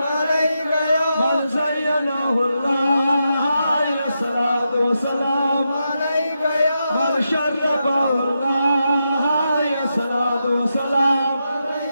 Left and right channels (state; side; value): inverted; both; correlation -0.86